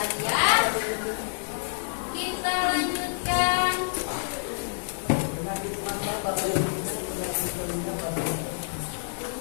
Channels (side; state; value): right; silent; digital silence